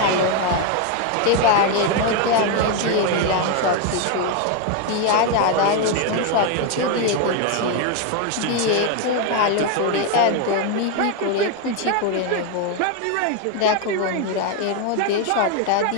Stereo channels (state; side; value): different; both; correlation 0.01